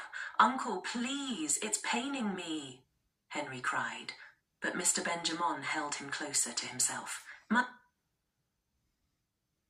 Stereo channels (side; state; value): both; identical; correlation 1.00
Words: Uncle, please, it's paining me, Henry cried. But Mr. Benjamin held him closer to himself.